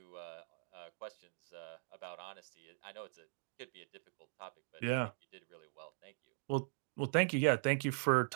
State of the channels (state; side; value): silent; left; digital silence